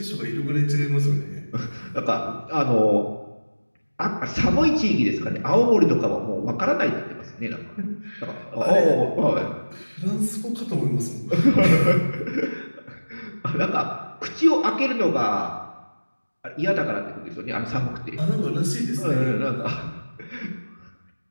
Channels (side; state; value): both; inverted; correlation -1.00